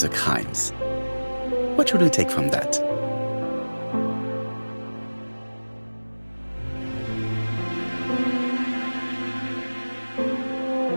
crimes. What should we take from that?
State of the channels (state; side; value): inverted; both; correlation -1.00